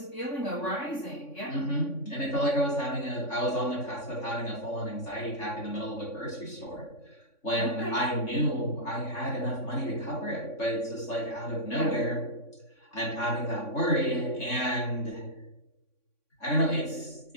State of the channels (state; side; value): late; right; 3.6 ms